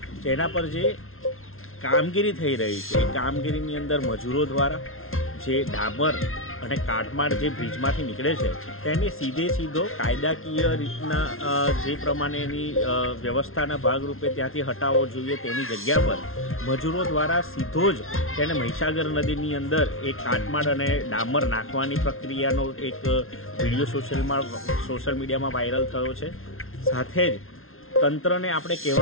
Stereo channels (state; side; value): late; right; 0.61 ms